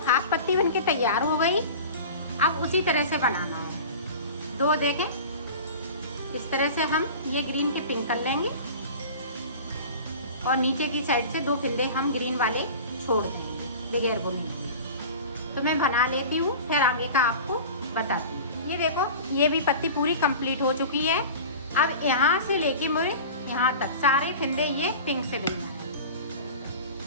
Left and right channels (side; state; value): both; inverted; correlation -0.36